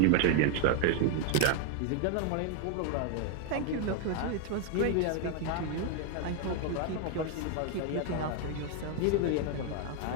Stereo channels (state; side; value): different; both; correlation 0.01